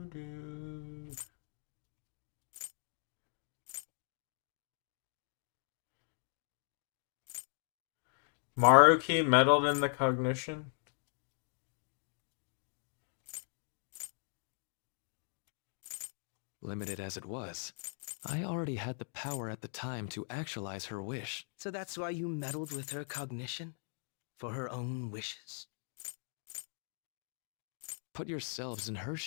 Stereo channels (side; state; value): right; silent; 52 dB below the other